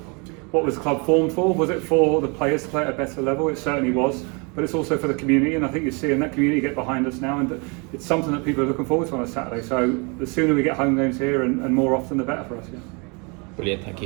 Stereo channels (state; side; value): quieter; left; 31.9 dB